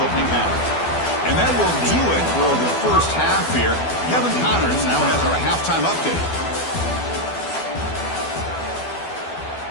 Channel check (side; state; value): right; late; 12 ms